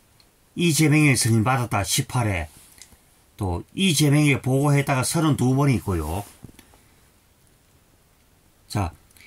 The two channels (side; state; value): both; identical; correlation 1.00